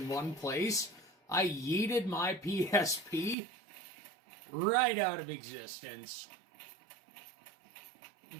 one place. I yeeted my PSP right out of existence.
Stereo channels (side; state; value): left; drops out; at 3.4 s